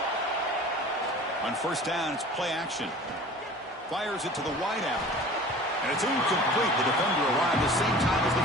On 1st down, it's play action. Fires it to the wideout. And it's incomplete. The defender arrived the same time as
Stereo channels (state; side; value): normal; both; correlation 0.42